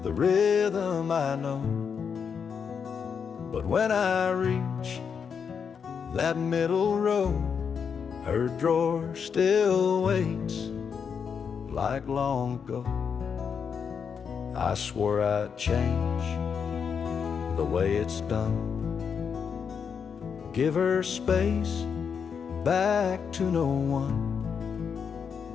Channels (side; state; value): right; quieter; 6.6 dB